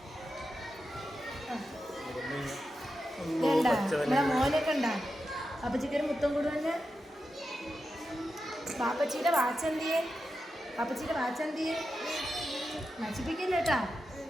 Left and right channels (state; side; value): normal; both; correlation 0.89